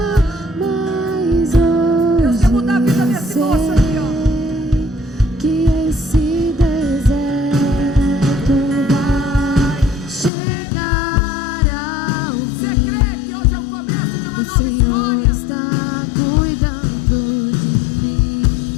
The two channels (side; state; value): right; drops out; at 10.3 s